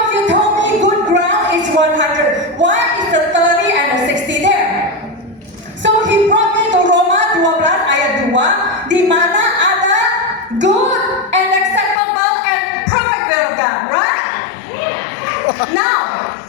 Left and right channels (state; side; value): drops out; right; at 12.0 s